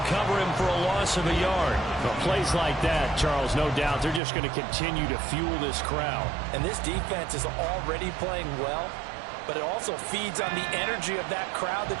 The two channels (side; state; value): left; drops out; at 4.2 s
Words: cover him for a loss of a yard. Well, plays like that, Charles, no doubt, they're just going to continue to fuel this crowd. And this defense is already playing well, but it also feeds on the energy of that crowd